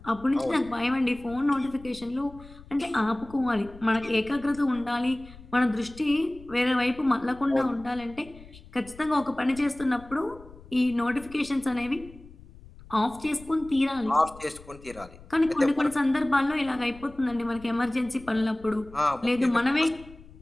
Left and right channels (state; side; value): noise; left; rumble, 20 dB below the sound